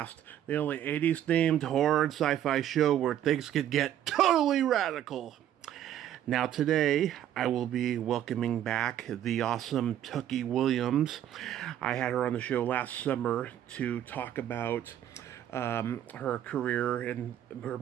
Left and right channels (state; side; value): quieter; left; 11.1 dB